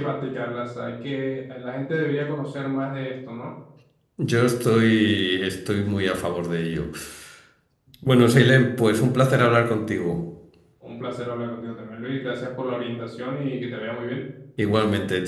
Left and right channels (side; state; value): both; identical; correlation 1.00